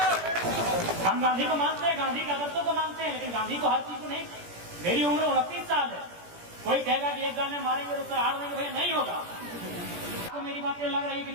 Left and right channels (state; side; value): late; left; 17 ms